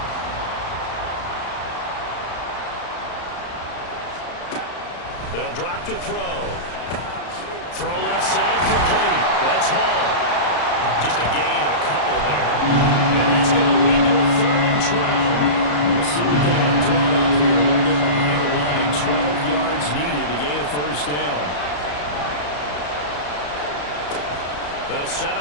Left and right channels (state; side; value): late; right; 34 ms